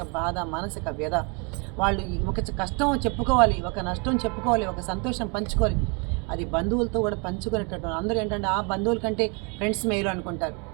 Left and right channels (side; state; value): left; quieter; 33.4 dB